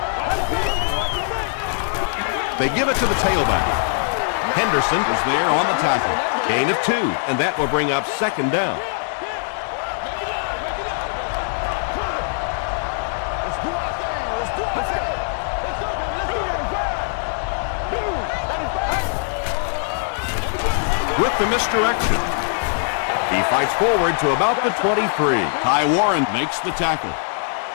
They give it to the tailback. Henderson is there on the tackle. Gain of 2, and that will bring up second down. With the misdirection, he fights forward to about the 23. Ty Warren makes the tackle.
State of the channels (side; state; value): right; silent; 62 dB below the other